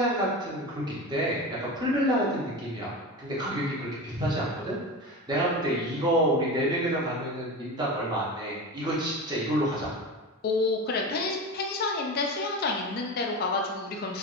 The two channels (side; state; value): both; normal; correlation 0.26